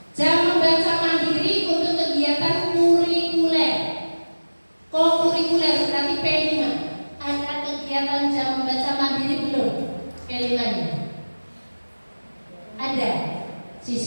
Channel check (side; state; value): both; inverted; correlation -1.00